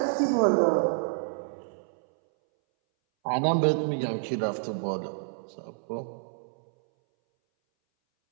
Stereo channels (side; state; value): left; silent; 59 dB below the other